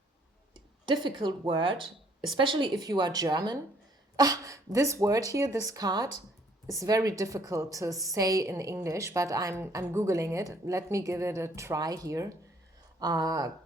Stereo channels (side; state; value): both; normal; correlation 0.63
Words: difficult word, especially if you are German. This word here, this card, is very difficult to say in English, but I'm Googling it. Let me give it a try here.